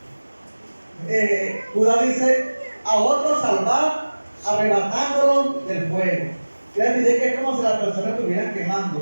Judas dice, a otros salvar, arrebatándolos del fuego. Quiere decir que es como si las personas estuvieran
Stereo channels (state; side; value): inverted; both; correlation -1.00